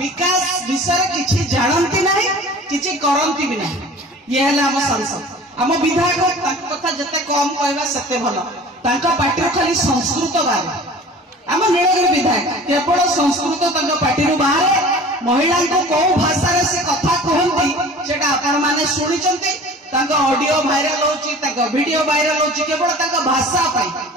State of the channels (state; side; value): normal; both; correlation 0.43